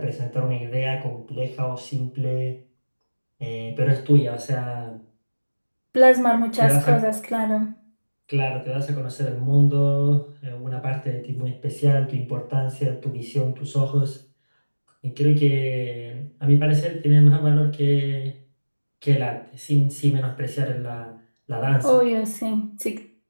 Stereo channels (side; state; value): both; inverted; correlation -1.00